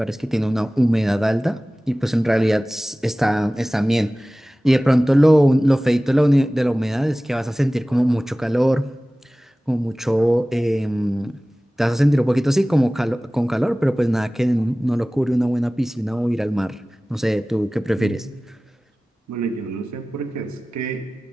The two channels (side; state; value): both; normal; correlation 0.98